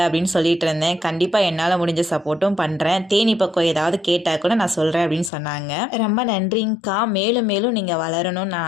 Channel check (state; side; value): drops out; right; at 5.3 s